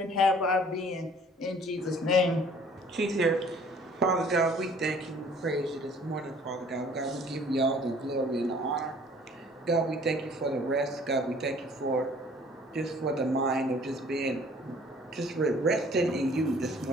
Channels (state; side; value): normal; both; correlation 0.54